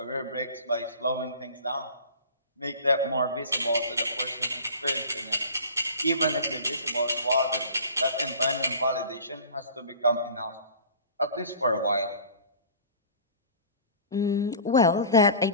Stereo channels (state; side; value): inverted; both; correlation -0.42